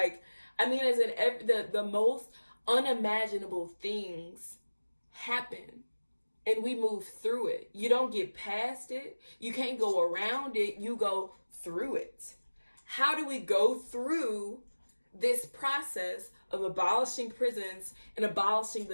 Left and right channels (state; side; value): inverted; both; correlation -1.00